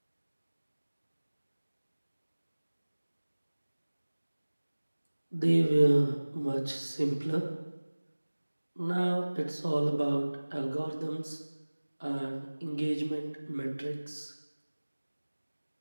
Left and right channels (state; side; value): inverted; both; correlation -1.00